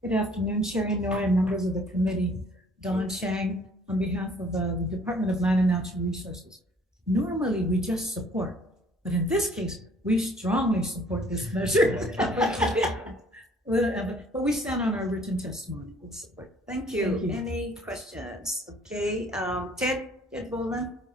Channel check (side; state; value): both; normal; correlation 0.57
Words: Good afternoon, Chair Inoue and members of the committee. Don Chang on behalf of the Department of Land and Natural Resources. Normally, we just support, but in this case, we strongly support this measure. But we stand on our written testimony. Thank you. Any questions? Okay, Ted Boland.